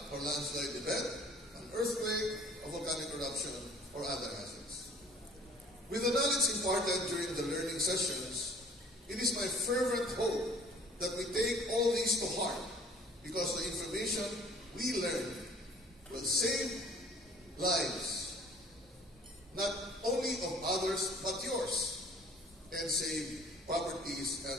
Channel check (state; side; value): normal; both; correlation 0.52